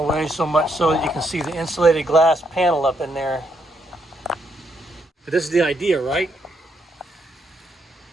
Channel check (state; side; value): normal; both; correlation 0.76